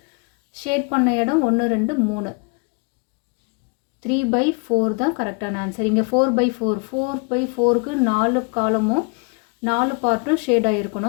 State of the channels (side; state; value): right; quieter; 32.8 dB